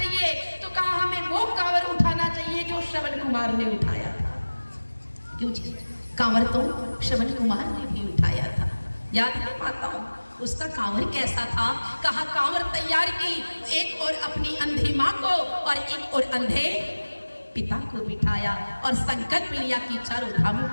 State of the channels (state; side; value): inverted; both; correlation -1.00